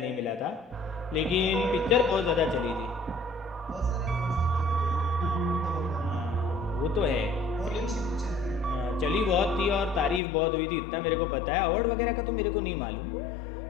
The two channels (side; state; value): right; drops out; at 10.2 s